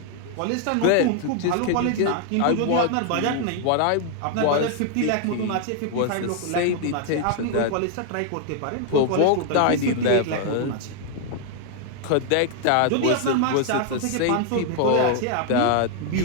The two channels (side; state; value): both; different; correlation 0.00